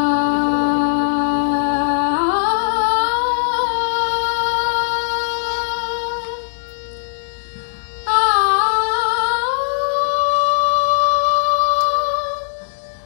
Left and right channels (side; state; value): right; silent; 65 dB below the other